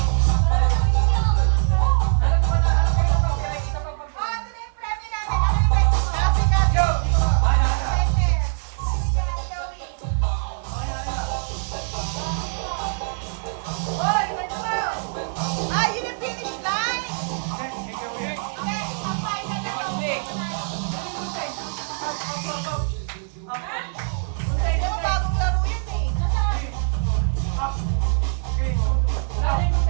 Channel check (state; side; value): silent; left; digital silence